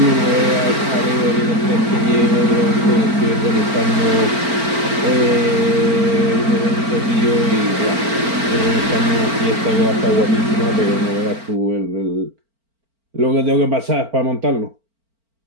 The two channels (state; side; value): late; left; 4.4 ms